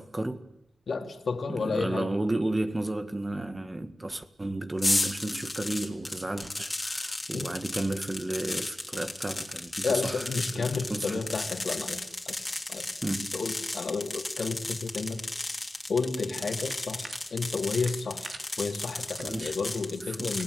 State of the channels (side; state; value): both; normal; correlation 0.94